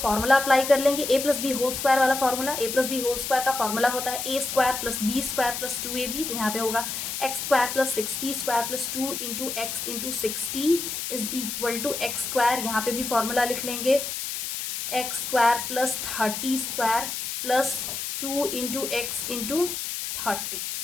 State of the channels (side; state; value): left; noise; hiss, 4 dB below the sound